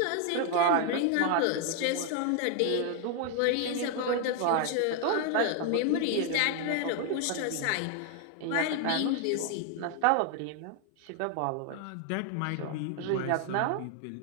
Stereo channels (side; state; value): both; different; correlation 0.00